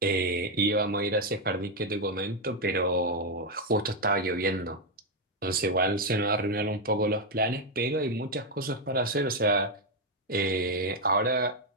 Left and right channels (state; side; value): normal; both; correlation 0.03